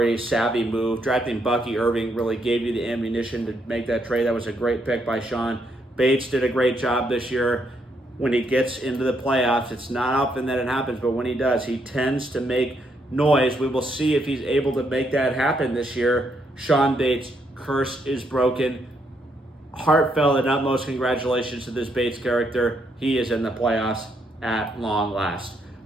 savvy move. Drafting Bucky Irving really gave you the ammunition to make that trade. That was a great pick by Sean. Bates did a great job this year. When he gets into the playoffs, it's not often that it happens, but when he does, he tends to make noise. We will see if he's able to make that happen this year. Sean Bates, curse is broken. Heartfelt and utmost congratulations to this Bates character. He is in the playoffs at long last.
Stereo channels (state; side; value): normal; both; correlation 0.75